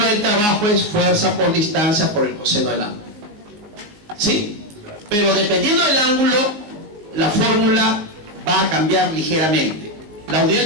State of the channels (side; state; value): left; late; 19 ms